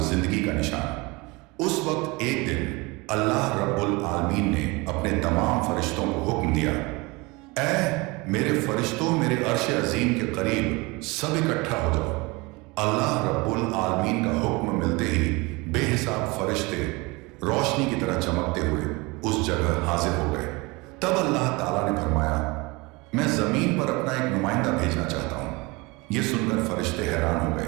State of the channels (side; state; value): left; quieter; 25.0 dB